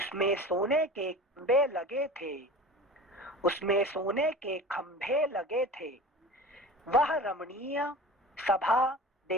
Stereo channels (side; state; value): both; normal; correlation 0.36